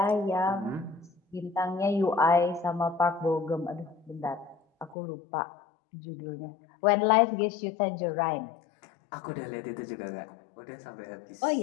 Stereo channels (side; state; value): right; drops out; at 5.0 s